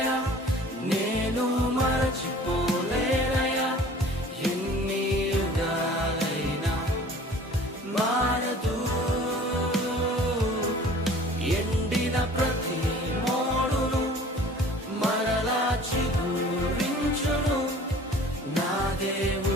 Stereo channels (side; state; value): both; normal; correlation 0.48